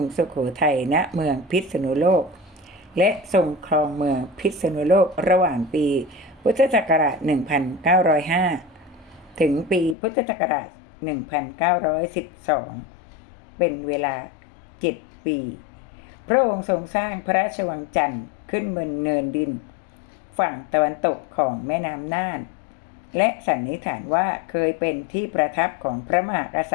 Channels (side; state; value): right; drops out; at 10.0 s